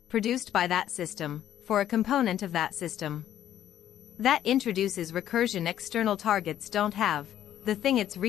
produced by that system, for a component of that system. That introduces recursion external targets don't have. The thing it's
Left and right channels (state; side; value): quieter; right; 11.3 dB